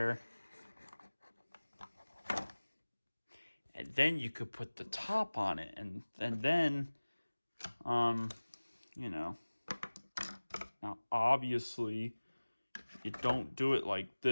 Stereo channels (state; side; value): inverted; both; correlation -1.00